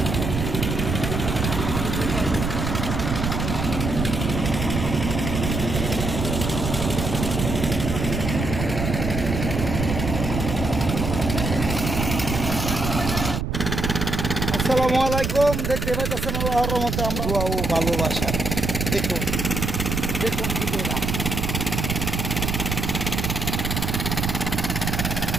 আসসালামু আলাইকুম। দেখতে পাইতেছেন আল্লাহর রহমতে আমরা দোয়া ও ভালোবাসা। দেখুন দেখুন ভিডিওটা।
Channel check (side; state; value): right; noise; rumble, 2 dB below the sound